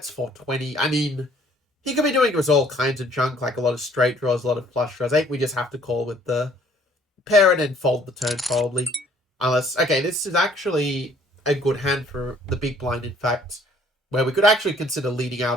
420. I mean, he could be doing us all kinds of junk, like a lot of straight draws, a lot of flush draws. I think we just have to call with the pair and then fold the turn, probably. Unless, okay, this is actually a good hand for the big blind, in fact, where we could actually consider leading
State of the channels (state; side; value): normal; both; correlation 0.59